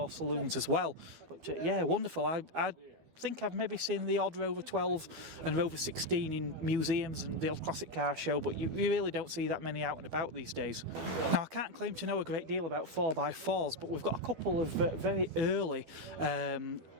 saloons as well. But yeah, wonderful. I think I've maybe seen the odd Rover 12 and Rover 16 in museums and the odd classic car show, but you really don't see that many out and about these days. Now, I can't claim to know a great deal about 4x4s, but we've got a couple of very early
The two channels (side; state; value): left; late; 12 ms